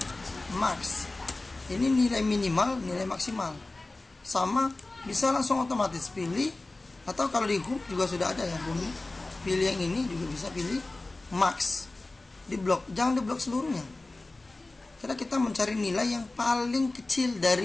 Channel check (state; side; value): quieter; right; 3.0 dB